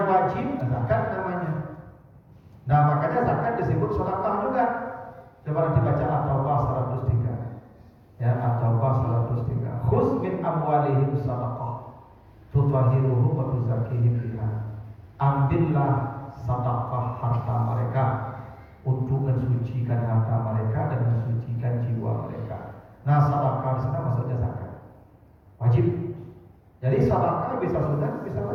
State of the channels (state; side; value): identical; both; correlation 1.00